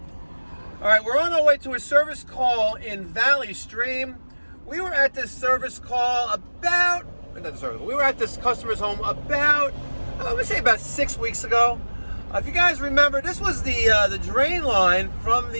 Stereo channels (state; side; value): inverted; both; correlation -1.00